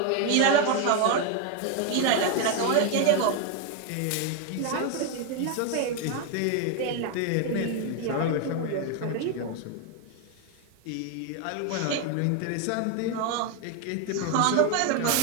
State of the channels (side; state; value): both; different; correlation 0.01